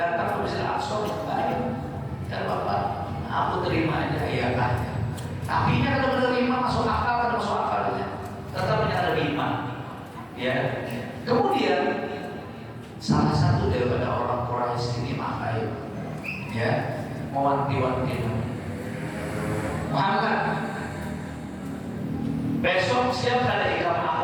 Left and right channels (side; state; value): both; identical; correlation 1.00